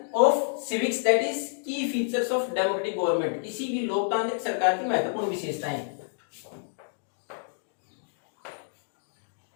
of civics, that is key features of democratic government. इसी भी लोकतांत्रिक सरकार की महत्वपूर्ण विशेषताएं.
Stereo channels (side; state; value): right; silent; digital silence